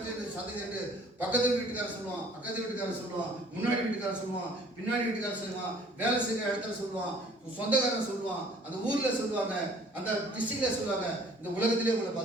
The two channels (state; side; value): normal; both; correlation 0.55